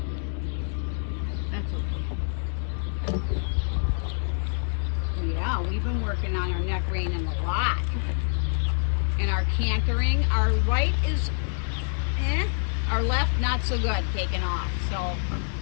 That's okay. Yeah, we've been working on our neck reining a lot. And our cantering, our right is our left not so good, taking off. So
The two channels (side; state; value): right; silent; digital silence